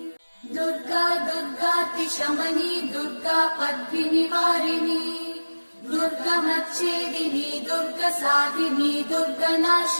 दुर्गा दुर्गातिशमनी दुर्गा पद्मिनिवारिणी दुर्गमच्छेदिनी दुर्गसाधिनी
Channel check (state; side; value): inverted; both; correlation -1.00